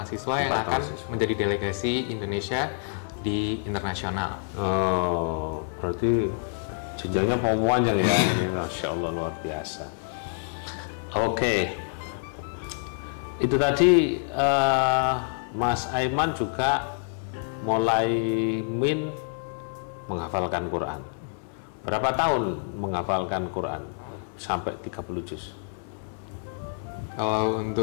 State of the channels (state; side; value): silent; right; digital silence